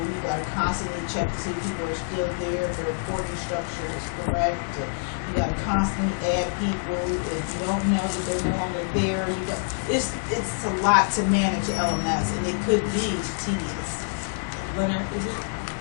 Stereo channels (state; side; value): silent; right; digital silence